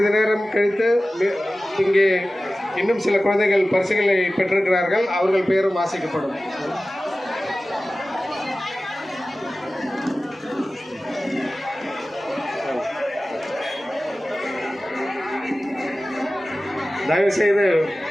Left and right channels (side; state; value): both; normal; correlation 0.96